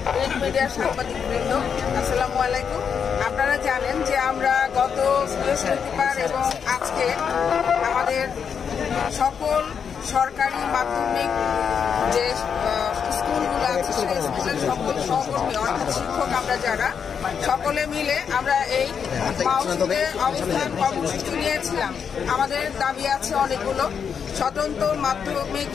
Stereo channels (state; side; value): quieter; right; 7.0 dB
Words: প্রিন্ট মিডিয়ার সাংবাদিকবৃন্দ, আসসালামু আলাইকুম। আপনারা জানেন যে আমরা গত বৃহস্পতিবার এবং আজকে আমাদের সকল সরকারি মাধ্যমিক যে স্কুলগুলো আছে সেই স্কুলের সকল সহকর্মী অর্থাৎ শিক্ষক আমরা যারা সকলে মিলে আমরা এই মাউসিতে অবস্থান কর্মসূচি নিয়েছিলাম। আমাদের দাবি আছে অনেকগুলো। স্বতন্ত্র মাধ্যমিক